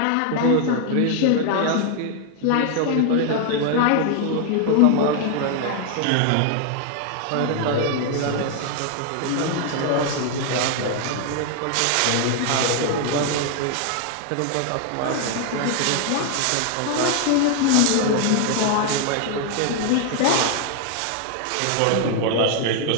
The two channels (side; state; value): both; different; correlation 0.00